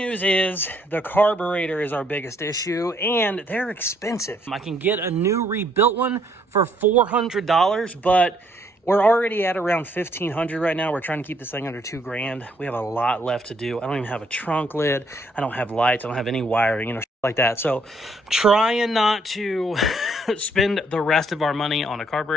is the carburetor is our biggest issue, and they're expensive. I can get a new rebuilt one for $400, but we're already at around $1,500 right now. We're trying to keep this thing under $2,000. We have a lot left to do. I don't even have a trunk lid. I don't have lights. I don't have any wiring, shit like that. So trying not to spend the rest of our money on a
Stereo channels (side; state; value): both; normal; correlation 0.68